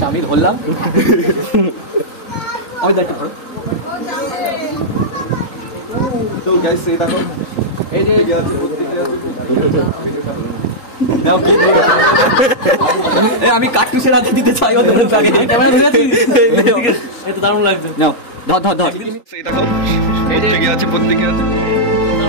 আমি ধরলাম, আমি দায়িত্ব করো। তো গাইস এই দেখো, এই যে আমি কার্টুসের হাতে দিতে চাই ওদের আগে। এটা দারুণ লাগছে। নাও ধর ধর ধর। সেই দেখো, প্রত্যেকে আছে, প্রত্যেকে আছে,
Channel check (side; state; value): right; late; 3.9 ms